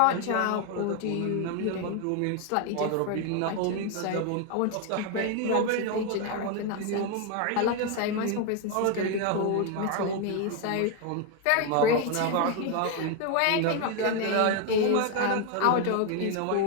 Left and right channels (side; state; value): both; different; correlation 0.01